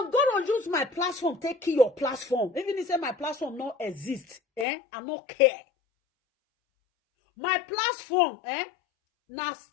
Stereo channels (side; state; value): right; drops out; at 4.7 s